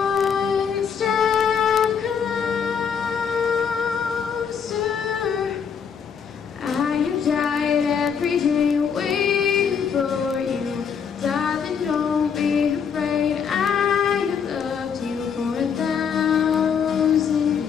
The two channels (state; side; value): quieter; right; 6.9 dB